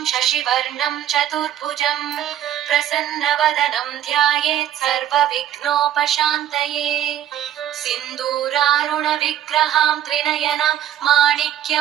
शशिवर्णं चतुर्भुजं प्रसन्नवदनं ध्यायेत् सर्वविघ्नोपशान्तये। सिन्दूरारुणविग्रहां त्रिनयनां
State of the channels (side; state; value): left; quieter; 11.3 dB